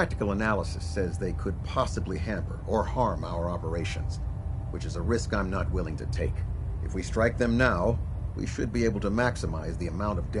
analysis says they could possibly hamper or harm our operations, which is a risk I'm not willing to take. If we strike them now, we should be able to maximize the amount of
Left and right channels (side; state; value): both; identical; correlation 1.00